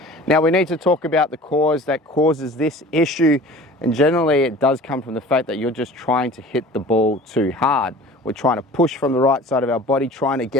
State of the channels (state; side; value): normal; both; correlation 0.43